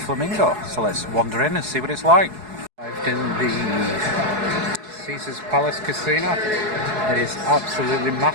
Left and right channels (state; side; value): late; left; 4.7 ms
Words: So let's wander in and see what it's like. I've done the Caesars Palace Casino. It is absolutely